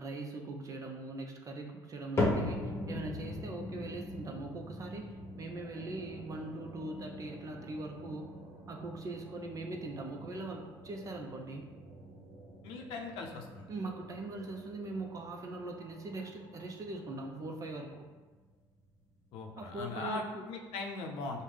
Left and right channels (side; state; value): both; normal; correlation 0.58